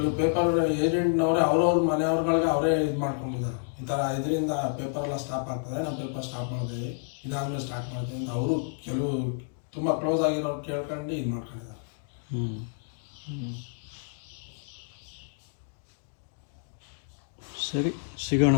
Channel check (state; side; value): silent; right; digital silence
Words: ಪೇಪರ್ ಏಜೆಂಟ್ನವರೇ ಅವ್ರವ್ರ ಮನೆಯವ್ರಗಳಿಗೆ ಅವರೇ ಇದು ಮಾಡ್ಕೊಂಡಿದ್ದಾರೆ. ಈ ಥರ ಇದರಿಂದ ಪೇಪರ್ ಎಲ್ಲ ಸ್ಟಾಪ್ ಆಗ್ತದೆ, ನಾವು ಪೇಪರ್ ಸ್ಟಾಪ್ ಮಾಡ್ತೀವಿ, ಇದಾದ್ಮೇಲೆ ಸ್ಟಾರ್ಟ್ ಮಾಡ್ತೀವಿ ಅಂತ ಅವರು ಕೆಲವು ತುಂಬ ಕ್ಲೋಸ್ ಆಗಿರೋರು ಕೇಳ್ಕೊಂಡು ಇದು ಮಾಡ್ಕೊಂಡಿದ್ದಾರೆ. ಸರಿ, ಸಿಗೋಣ